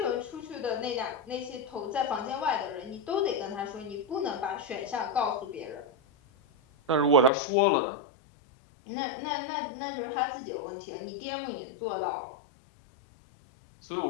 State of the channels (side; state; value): right; drops out; at 7.3 s